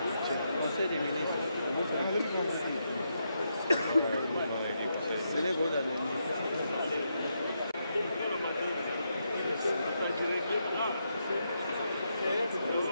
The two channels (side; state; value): both; inverted; correlation -0.82